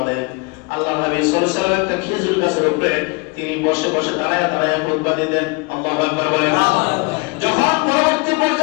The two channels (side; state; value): right; quieter; 28.7 dB